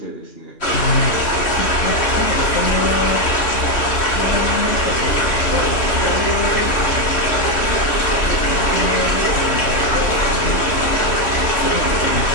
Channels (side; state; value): right; late; 3.1 ms